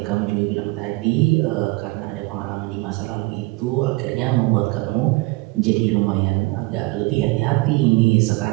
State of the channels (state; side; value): quieter; left; 23.1 dB